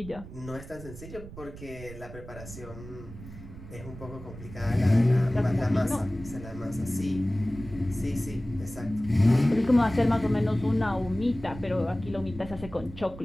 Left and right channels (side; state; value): right; noise; rumble, 14 dB below the sound